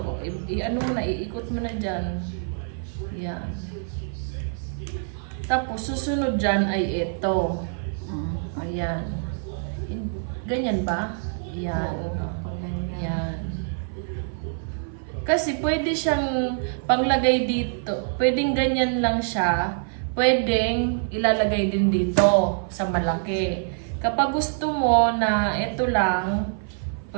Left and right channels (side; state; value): left; silent; 55 dB below the other